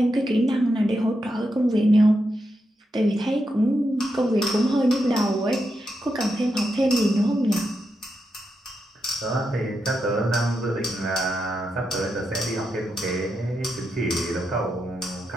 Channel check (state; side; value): normal; both; correlation 0.85